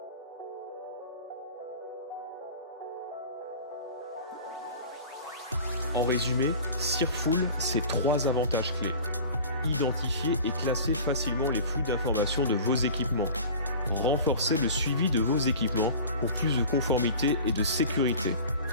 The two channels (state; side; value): inverted; both; correlation -0.40